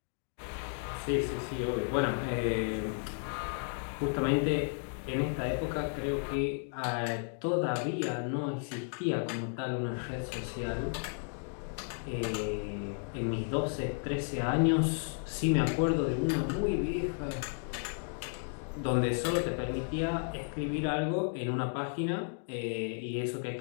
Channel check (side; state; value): right; silent; 56 dB below the other